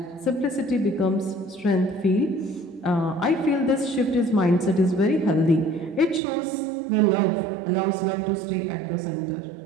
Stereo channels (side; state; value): left; drops out; at 6.2 s